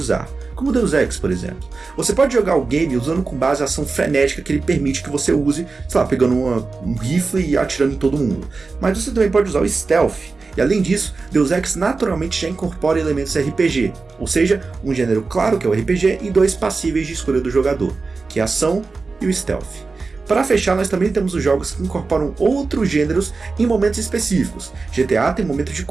como Deus Ex, por exemplo. Você pode jogar o game usando com base a ação frenética que ele permite que você use, sei lá, pegando um rifle e atirando em todo mundo. Mas você também pode usar o stealth, e além disso, Deus Ex naturalmente já incorpora elementos RPG, ou seja, um gênero claro que é o RPG e dois passíveis de escolha do jogador, que é a ação e o stealth. Para fechar, nós também temos os jogos que incorporam outros gêneros em momentos específicos. GTA tem momentos de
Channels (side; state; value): left; quieter; 4.1 dB